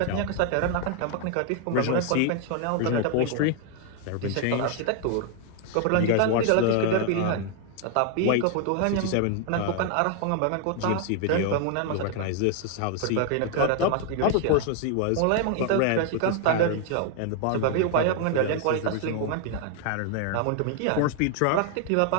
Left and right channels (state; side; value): different; both; correlation 0.00